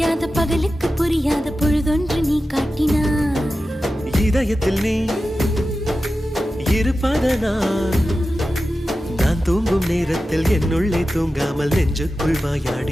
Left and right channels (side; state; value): both; normal; correlation 0.93